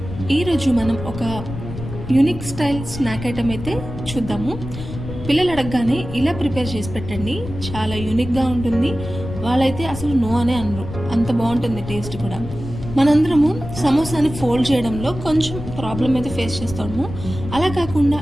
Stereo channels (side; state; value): left; noise; rumble, 10 dB below the sound